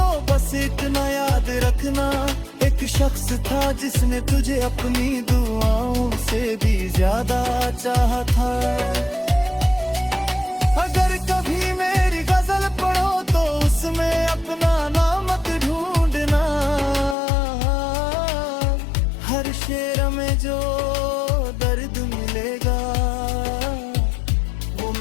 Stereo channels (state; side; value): drops out; right; at 17.2 s